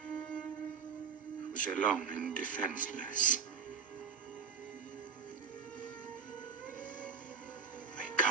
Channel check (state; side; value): quieter; left; 5.9 dB